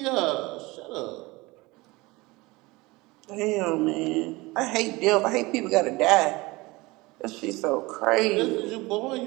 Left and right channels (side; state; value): left; quieter; 22.5 dB